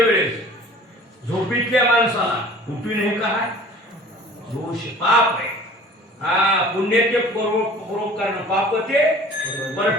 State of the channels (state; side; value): normal; both; correlation 0.46